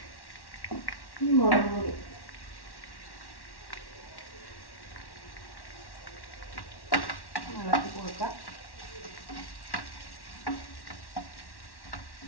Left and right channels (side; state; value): right; late; 1.1 ms